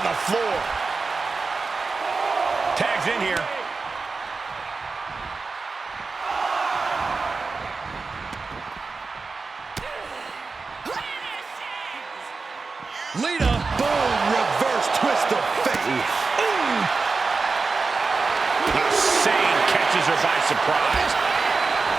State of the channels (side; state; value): left; quieter; 4.2 dB